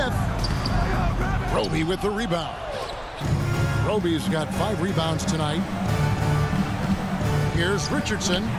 Roby with the rebound. Roby's got 5 rebounds tonight. Here's Richardson.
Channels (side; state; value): both; identical; correlation 1.00